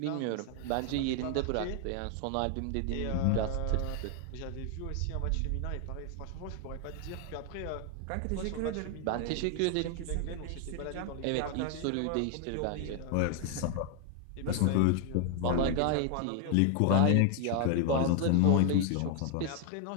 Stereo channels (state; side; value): different; both; correlation 0.00